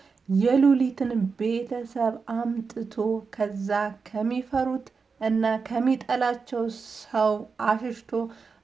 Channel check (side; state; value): left; quieter; 5.0 dB